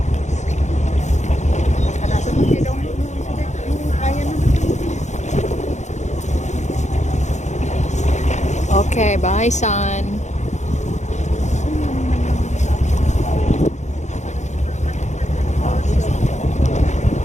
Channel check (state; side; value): late; right; 0.34 ms